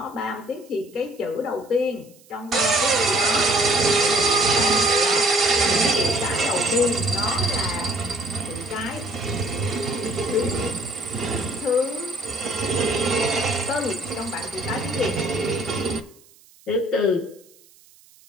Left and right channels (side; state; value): right; noise; hiss, 27 dB below the sound